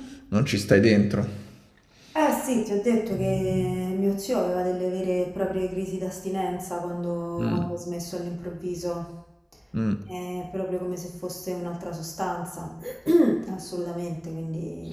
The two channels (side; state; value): both; identical; correlation 1.00